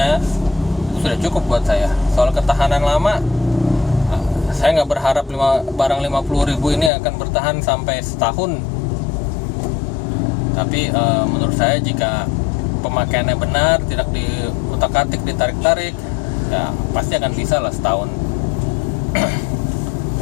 sudah cukup buat saya. Soal ketahanan lama, saya nggak berharap barang 50.000 ini akan bertahan sampai setahun. Tapi menurut saya jika pemakaiannya benar, tidak diutak-atik, ditarik-tarik, ya pasti akan bisa lah setahun.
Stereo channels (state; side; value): drops out; right; at 6.9 s